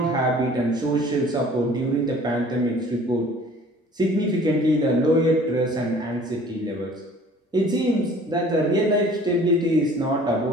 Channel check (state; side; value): normal; both; correlation 0.50